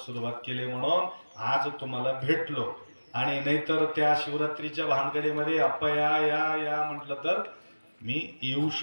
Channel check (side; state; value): both; inverted; correlation -1.00